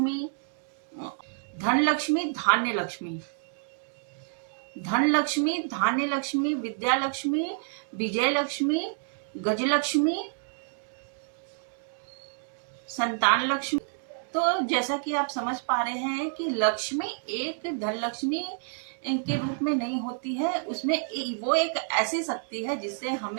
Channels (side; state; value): left; silent; digital silence